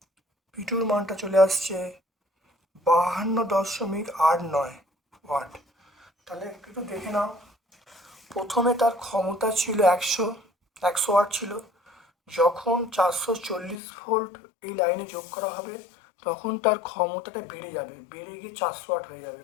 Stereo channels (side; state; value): right; drops out; at 13.8 s